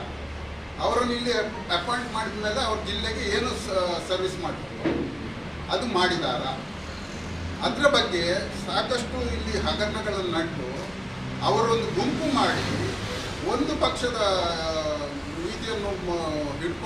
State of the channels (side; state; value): both; identical; correlation 1.00